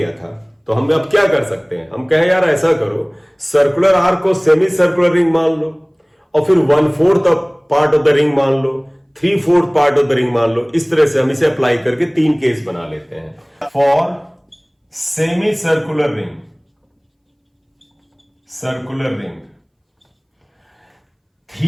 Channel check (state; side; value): identical; both; correlation 1.00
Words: था, तो हम अब क्या कर सकते हैं, हम कहे यार ऐसा करो सर्कुलर आर्क को सेमी सर्कुलर रिंग मान लो, और फिर 1/4 पार्ट ऑफ द रिंग मान लो, 3/4 पार्ट ऑफ द रिंग मान लो। इस तरह से हम इसे अप्लाई करके 3 केस बना लेते हैं। For semi circular ring, circular ring